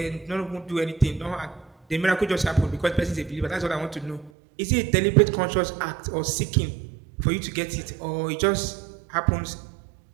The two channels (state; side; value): drops out; left; at 4.3 s